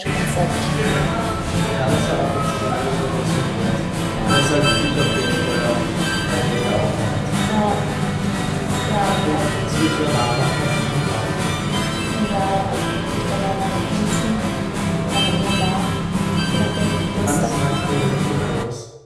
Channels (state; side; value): identical; both; correlation 1.00